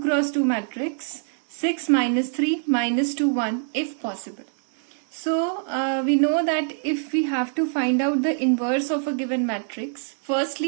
2 matrix. 6 minus 3 minus 2 1 if possible. So we know that if we have to find out the inverse of a given matrix,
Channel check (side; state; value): left; silent; 62 dB below the other